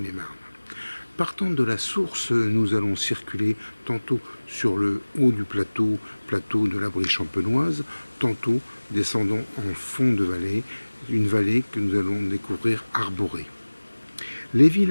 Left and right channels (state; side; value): inverted; both; correlation -1.00